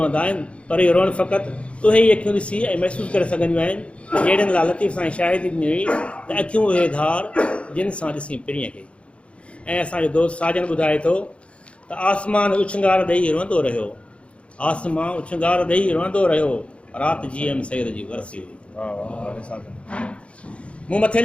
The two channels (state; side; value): late; right; 0.060 ms